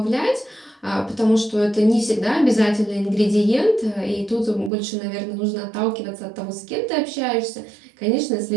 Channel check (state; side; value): drops out; left; at 4.7 s